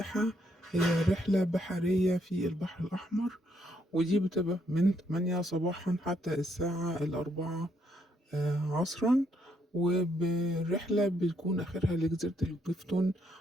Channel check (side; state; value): both; normal; correlation 0.73